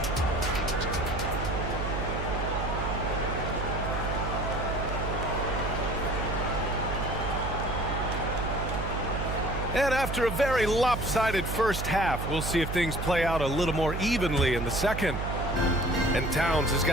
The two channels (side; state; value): right; noise; hum, 4 dB below the sound